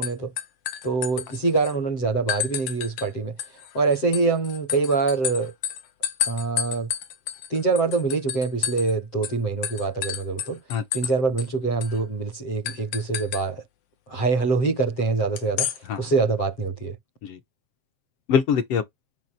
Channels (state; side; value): late; right; 7.7 ms